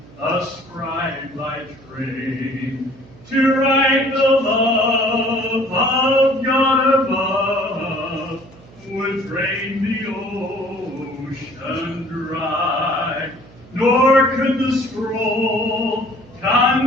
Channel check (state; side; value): noise; right; hum, 23 dB below the sound